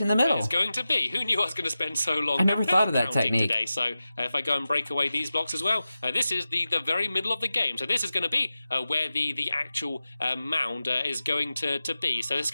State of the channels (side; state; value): both; inverted; correlation -0.93